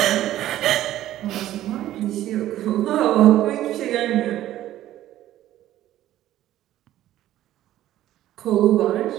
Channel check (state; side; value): quieter; left; 13.4 dB